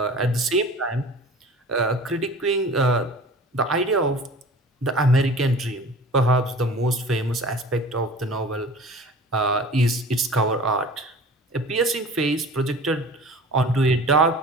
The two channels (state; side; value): normal; both; correlation 0.42